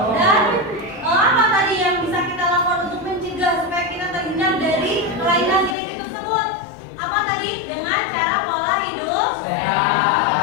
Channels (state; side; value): drops out; right; at 5.8 s